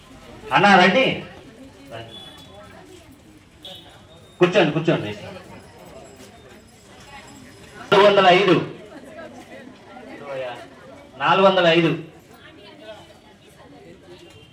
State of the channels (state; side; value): identical; both; correlation 1.00